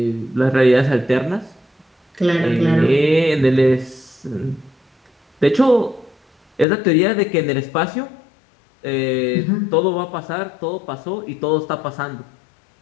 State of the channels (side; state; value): right; drops out; at 6.7 s